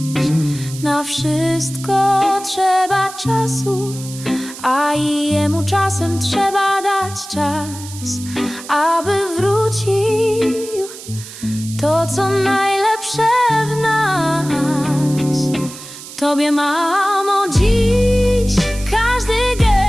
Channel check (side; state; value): right; noise; hiss, 14 dB below the sound